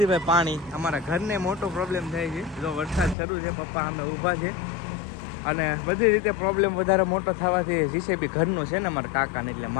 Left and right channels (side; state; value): right; drops out; at 3.2 s